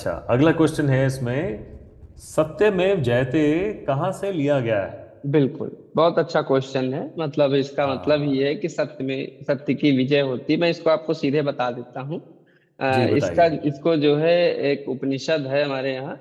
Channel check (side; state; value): both; identical; correlation 1.00